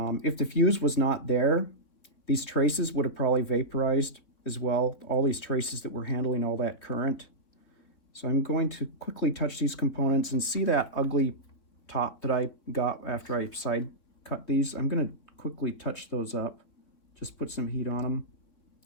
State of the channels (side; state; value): right; late; 3.8 ms